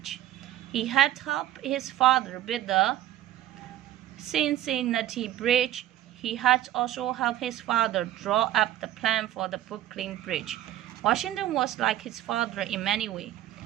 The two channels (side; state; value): left; quieter; 13.0 dB